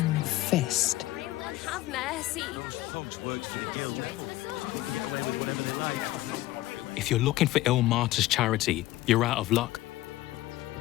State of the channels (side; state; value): right; quieter; 16.6 dB